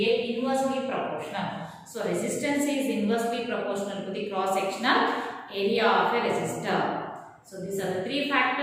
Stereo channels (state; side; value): identical; both; correlation 1.00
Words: inversely proportional. So, resistance is inversely proportional to the cross-sectional area of a resistor. So, these are the 3